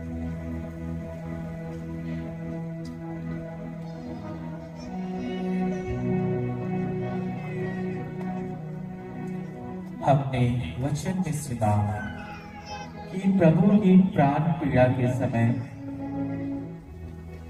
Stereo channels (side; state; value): both; identical; correlation 1.00